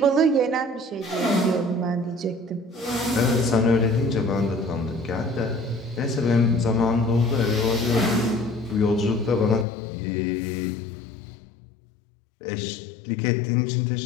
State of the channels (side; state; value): right; drops out; at 9.7 s